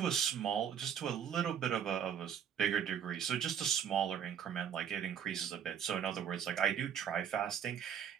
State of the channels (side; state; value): left; quieter; 8.4 dB